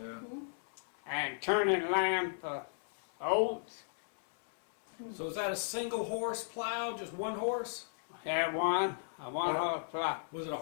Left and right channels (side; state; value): right; silent; 54 dB below the other